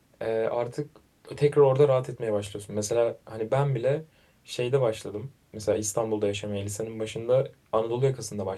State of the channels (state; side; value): identical; both; correlation 1.00